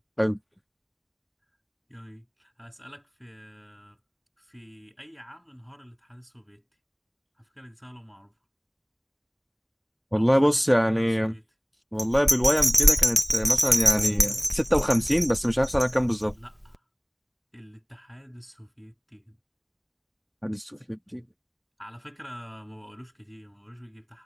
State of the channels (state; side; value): identical; both; correlation 1.00